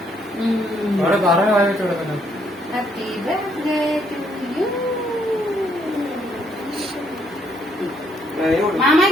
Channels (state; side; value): normal; both; correlation 0.70